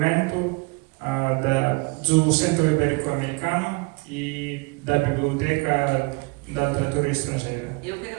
do Centro Ibérico-Americano e da Biblioteca da Literatura Estrangeira. Eu que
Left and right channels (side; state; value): left; quieter; 28.2 dB